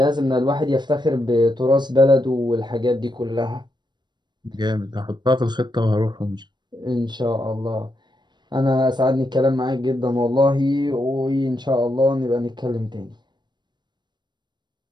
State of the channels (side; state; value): left; late; 0.22 ms